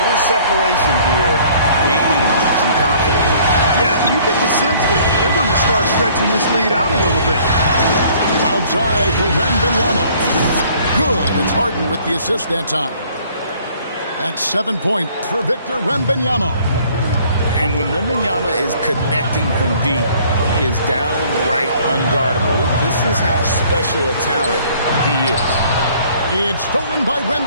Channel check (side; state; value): both; inverted; correlation -0.57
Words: separation here, gaining some confidence. Yeah, you get the sense that they're going to start stretching this lead out a little bit. Outside for Wembanyama. Good. It's Harden with the assist that time. That's 7 points for Victor Wembanyama. And when Wembanyama is connecting from deep, he is downright unguardable. This is how special a talent he is. It's stolen by